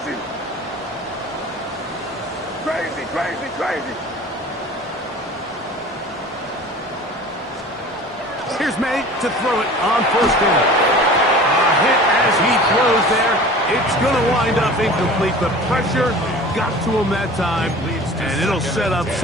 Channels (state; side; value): normal; both; correlation 0.41